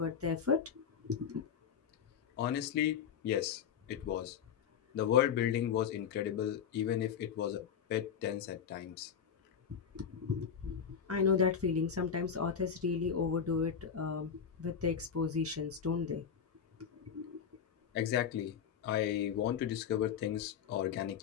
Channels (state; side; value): quieter; right; 7.6 dB